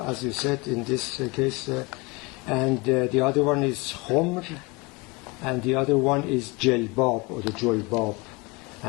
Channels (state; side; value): quieter; right; 25.9 dB